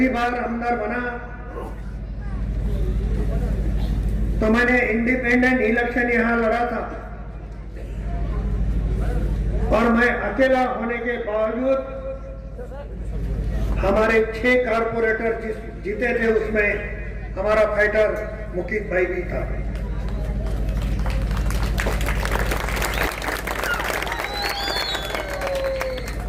बार आमदार बना तो मैंने इंडिपेंडेंट इलेक्शन यहाँ लड़ा था और मैं अकेला होने के बावजूद हमारे 6 कारपोरेटर जीते थे, उसमें हमारा फाइटर मुकीद भाई भी था।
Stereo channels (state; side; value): identical; both; correlation 1.00